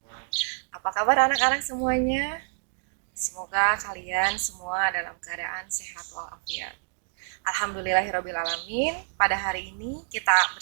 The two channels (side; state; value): left; silent; digital silence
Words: Apa kabar anak-anak semuanya? Semoga kalian semua dalam keadaan sehat walafiat. Alhamdulillahirrabbilalamin. Pada hari ini kita